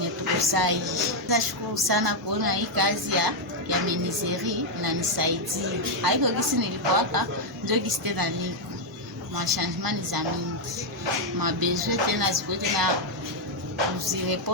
tukusai. Nashukuru sana kuona hii kazi ya menuiserie inanisaidia. Haiko gisi nilipowaka ndio gisi tena niko machangement za mingi mabesoin tena ziko tena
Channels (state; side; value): normal; both; correlation 0.00